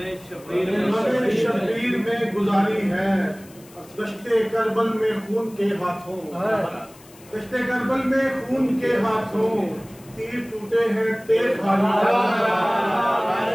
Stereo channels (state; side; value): noise; left; hiss, 24 dB below the sound